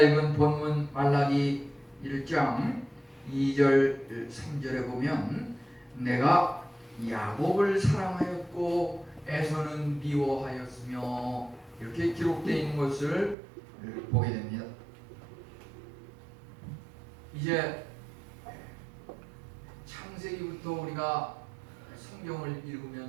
본문 말라기 1장 2절 3절에 보면 내가 야곱을 사랑하였고 에서는 미워하였으며 이렇게 기록되어 있는 것을 보게 됩니다. 이제 창세기부터 우리가 성경을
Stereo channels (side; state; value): left; drops out; at 13.4 s